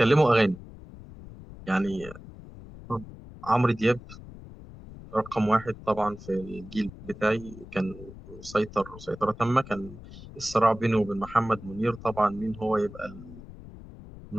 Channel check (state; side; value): noise; left; rumble, 16 dB below the sound